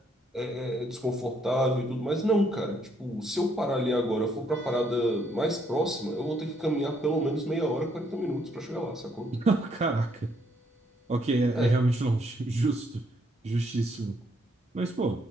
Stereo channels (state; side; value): normal; both; correlation 0.71